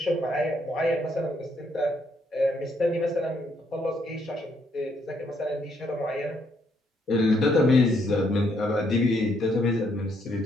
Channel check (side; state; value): both; normal; correlation 0.73